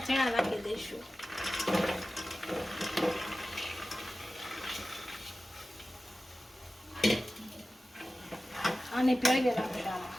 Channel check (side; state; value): both; normal; correlation 0.95